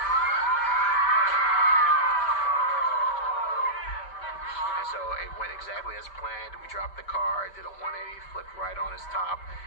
And so it went exactly as planned. We dropped the car, did a 180, flipped right on its top,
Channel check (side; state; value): right; late; 5.1 ms